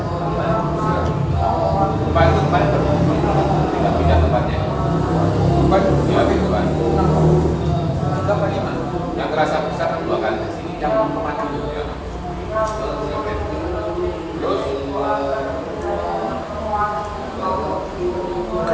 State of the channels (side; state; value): both; identical; correlation 1.00